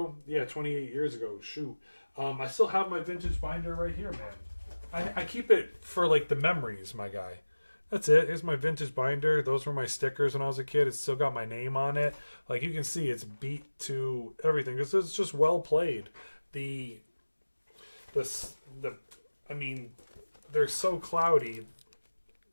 Yeah, 28 years ago. Shoot. I still have my vintage binder right here, man. I keep it for, like, the memories, my guy. That's it. Here's my vintage binder. Those were my stickers when I was a kid. It's still got my name on it. Like, you can see it's beat to everything. It's just well played. I mean, they're so cloudy.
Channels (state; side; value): inverted; both; correlation -1.00